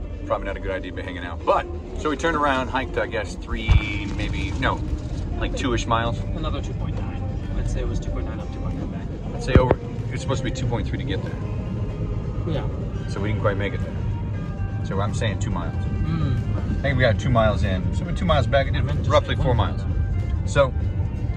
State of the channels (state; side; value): identical; both; correlation 1.00